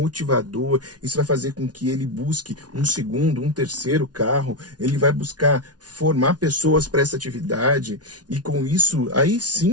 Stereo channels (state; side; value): late; left; 0.69 ms